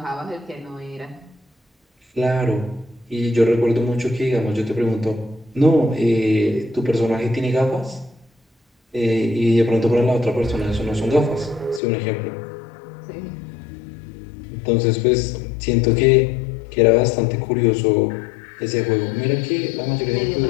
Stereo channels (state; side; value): drops out; right; at 11.8 s